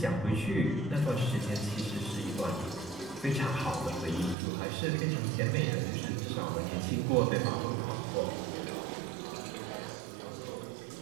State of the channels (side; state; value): left; drops out; at 4.4 s